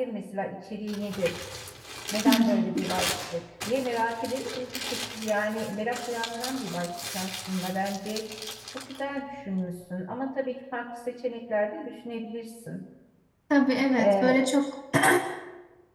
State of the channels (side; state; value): both; identical; correlation 1.00